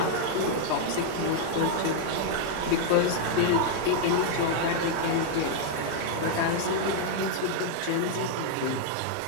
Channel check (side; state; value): both; different; correlation 0.00